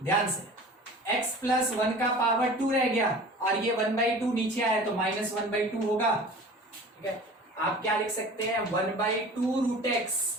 ध्यान से, x प्लस 1 का पावर 2 रह गया, और ये 1/2 नीचे आया तो -1/2 होगा, ठीक है। आप क्या लिख सकते हैं, 1/2√x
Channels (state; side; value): normal; both; correlation 0.41